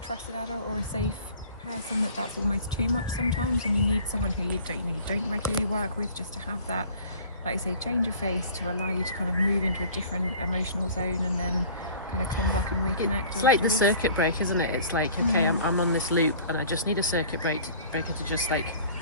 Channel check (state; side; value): inverted; both; correlation -0.46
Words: adult or a safe person that's almost too much sometimes, and you need someone who you don't regularly work with, just to have that, like I say, change of face to allow you to kind of move into a different emotional zone and then kind of come back and reconnect. It's like the circuit break, isn't it? It's like, okay, I'm on this loop and I just need a circuit breaker to just like